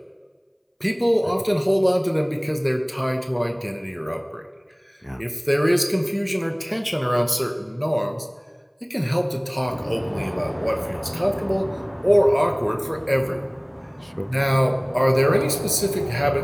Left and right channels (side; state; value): both; identical; correlation 1.00